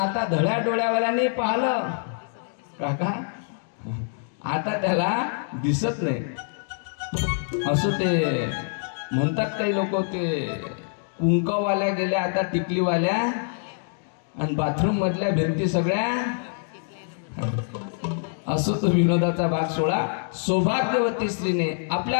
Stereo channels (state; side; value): silent; right; 62 dB below the other